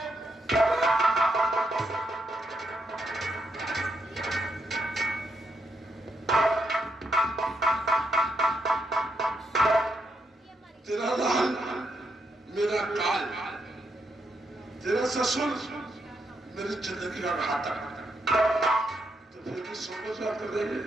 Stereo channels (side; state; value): both; normal; correlation 0.79